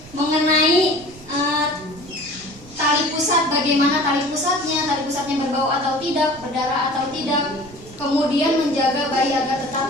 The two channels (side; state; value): right; noise; rumble, 21 dB below the sound